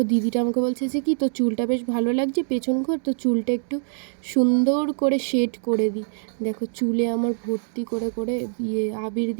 দিদিটা আমাকে বলছে যে কি তোর চুলটা বেশ ভালো লাগছে পেছন ঘর, তো চুলটা একটু সুন্দর করে শেড করে দিই। দেখো চুলে আমার ভর্তি করে করে আবির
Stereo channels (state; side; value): silent; left; digital silence